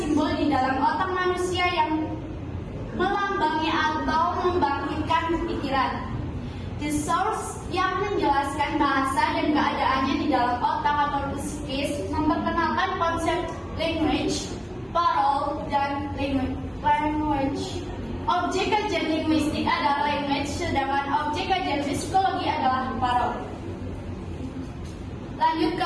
di dalam otak manusia yang melambangi atau membangkitkan pikiran. The Source yang menjelaskan bahasa dan keadaannya di dalam otak atau psikis memperkenalkan konsep language, parole, dan language. Objek kajian linguistik adalah language, sedangkan objek kajian psikologi adalah parole. Lanjut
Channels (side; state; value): both; identical; correlation 1.00